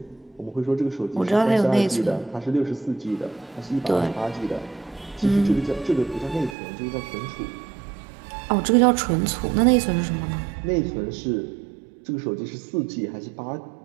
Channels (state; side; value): drops out; left; at 6.6 s